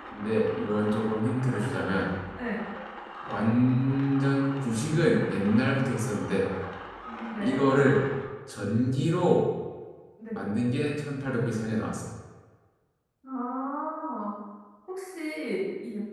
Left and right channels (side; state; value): both; identical; correlation 1.00